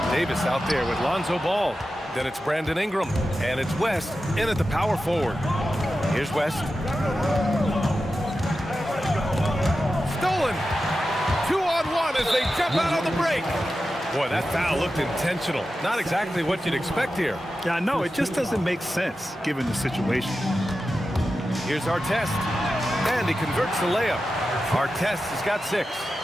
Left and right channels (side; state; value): both; normal; correlation 0.92